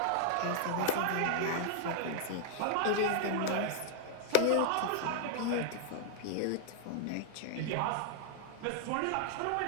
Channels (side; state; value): both; different; correlation -0.01